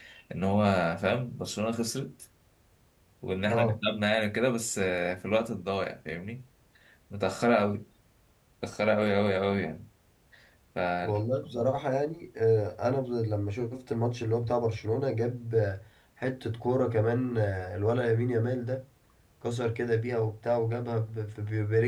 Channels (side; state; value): both; identical; correlation 1.00